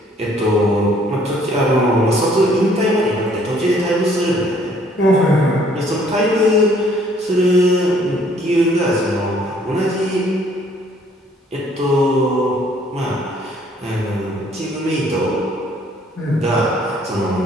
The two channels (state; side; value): normal; both; correlation 0.62